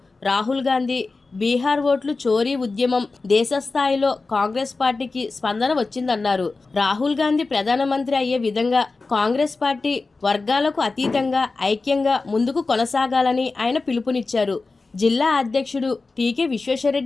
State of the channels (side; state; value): right; quieter; 3.8 dB